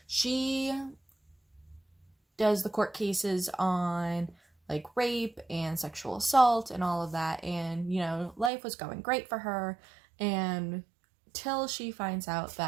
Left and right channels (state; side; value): drops out; left; at 8.5 s